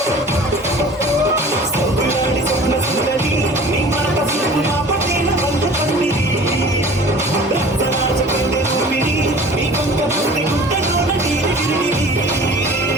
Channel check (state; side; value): normal; both; correlation 0.44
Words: సొగులాడి స్వప్న సుందరి, నీ మనక చూపు నా పట్టిన బంధ పందిరి. రక్తరాజ కన్నె రూపిణి, నీ కొంక పుట్టి గుట్టలోన తీరిగిరి.